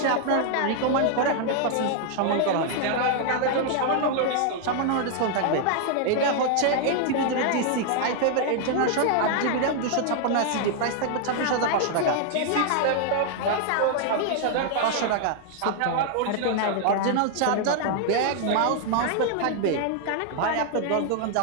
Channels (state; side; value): different; both; correlation 0.00